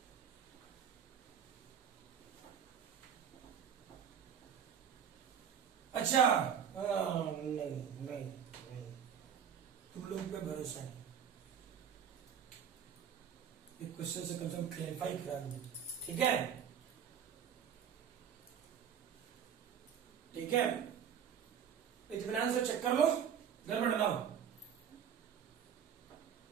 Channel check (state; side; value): quieter; left; 8.2 dB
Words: अच्छा नहीं, तुम लोग पे भरोसा नहीं, एक क्वेश्चन से कम क्लैरिफाई करा दूं। ठीक है, ठीक है, इत्मीनान से चेक कर लो, गड़बड़ ना हो।